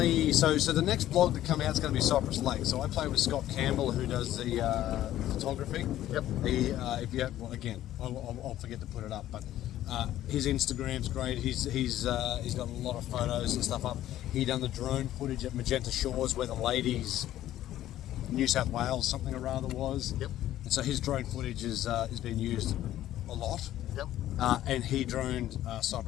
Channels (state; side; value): quieter; right; 13.2 dB